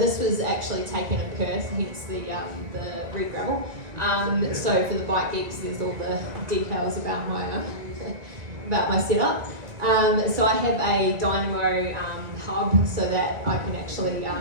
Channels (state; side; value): late; left; 1.9 ms